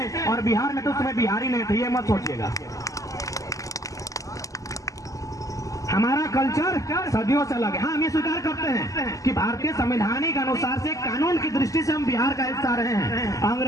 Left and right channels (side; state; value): right; late; 0.16 ms